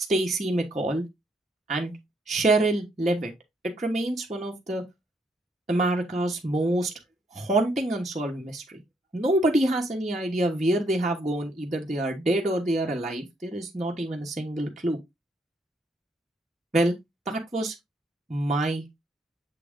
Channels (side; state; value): both; normal; correlation 0.72